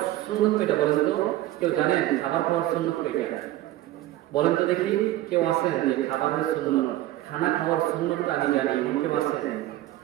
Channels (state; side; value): quieter; left; 15.2 dB